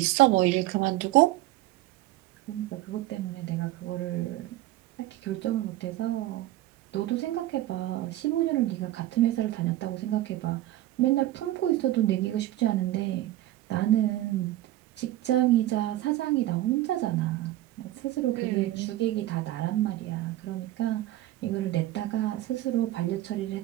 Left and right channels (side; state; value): left; quieter; 15.3 dB